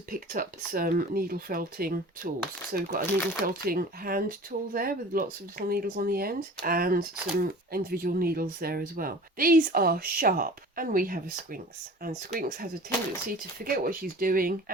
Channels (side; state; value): both; normal; correlation 0.41